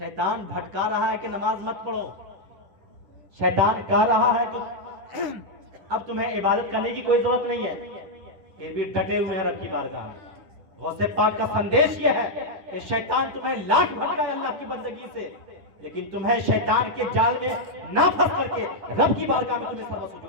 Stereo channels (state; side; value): late; left; 10 ms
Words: بھٹکا رہا ہے کہ نماز مت پڑھو، شیطان کہہ رہا ہے کہ اب تمہیں عبادت کرنے کی کوئی ضرورت نہیں ہے، پھر بھی ڈٹے ہوئے ہیں رب کی بارگاہ میں۔ غوث پاک کا سندیش یہ ہے کہ شیطان تمہیں لاکھ بھٹکائے اللہ کی بندگی سے، لیکن تمہیں شیطان کے جال میں نہ پھنس کر کے رب کی بارگاہ میں تمہیں سرو